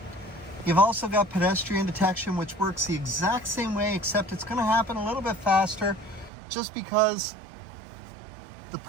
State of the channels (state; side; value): drops out; left; at 6.3 s